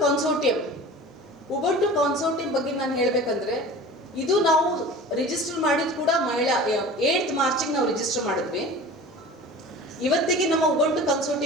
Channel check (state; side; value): normal; both; correlation 0.39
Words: consortium ಬಗ್ಗೆ ನಾನು ಹೇಳಬೇಕಂದ್ರೆ, ಇದು ನಾವು register ಮಾಡಿದ್ ಕೂಡ ಮಹಿಳಾ 8th ಮಾರ್ಚಿಗೆ ನಾವು register ಮಾಡಿದ್ವಿ. ಇವತ್ತಿಗೆ ನಮ್ಮ ಉಬಂಟು